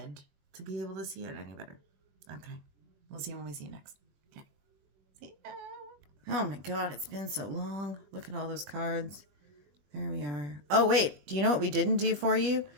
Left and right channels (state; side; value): late; left; 21 ms